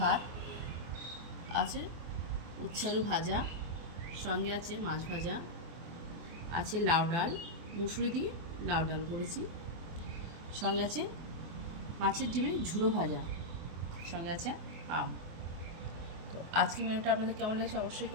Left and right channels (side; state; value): left; late; 24 ms